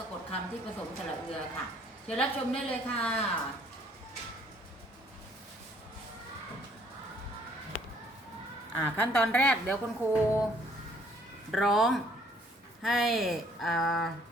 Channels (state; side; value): normal; both; correlation 0.62